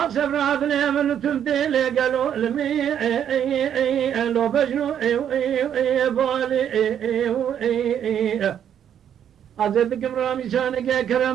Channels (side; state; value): left; quieter; 9.3 dB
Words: عدلي من تمثيلي قالوا لمي لو بجنو بالي عزيزكم رامي شانك